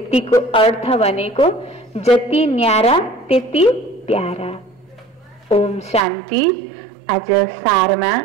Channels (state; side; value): drops out; left; at 6.0 s